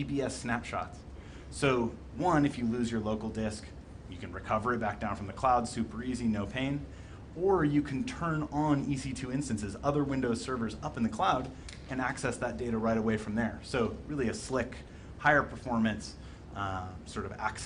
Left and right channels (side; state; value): both; identical; correlation 1.00